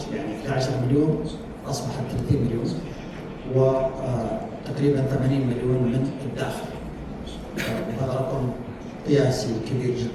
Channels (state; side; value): identical; both; correlation 1.00